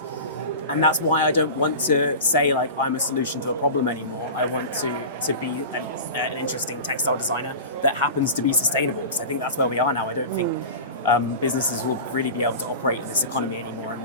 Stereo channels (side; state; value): both; inverted; correlation -0.32